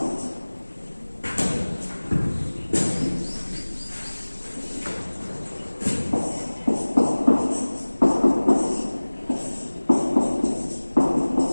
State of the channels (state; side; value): inverted; both; correlation -1.00